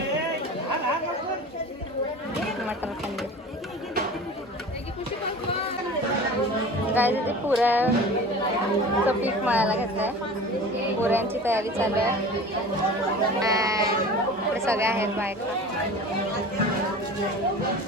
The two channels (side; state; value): both; normal; correlation 0.38